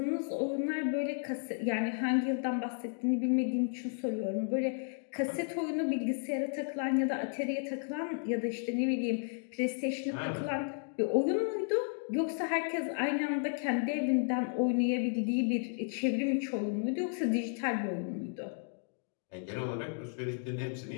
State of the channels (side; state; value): right; silent; 55 dB below the other